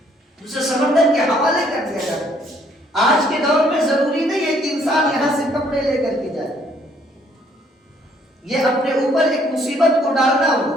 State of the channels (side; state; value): both; normal; correlation 0.64